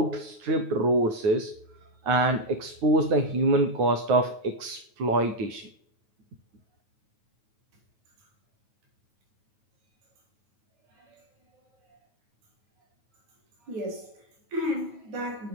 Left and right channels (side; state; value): left; late; 9.2 ms